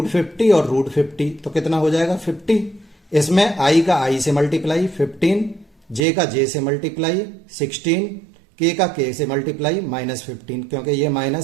और √50, तो कितना हो जाएगा 50। इसमें आई का आई से मल्टीप्लाई 15, जे का जे से मल्टीप्लाई 16, के का के से मल्टीप्लाई -15, क्योंकि ये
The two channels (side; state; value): left; drops out; at 6.0 s